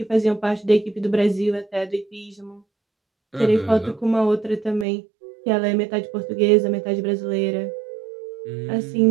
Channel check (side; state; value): left; drops out; at 4.9 s